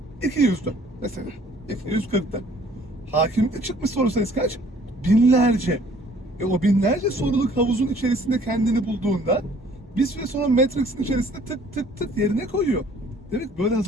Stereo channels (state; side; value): normal; both; correlation 0.57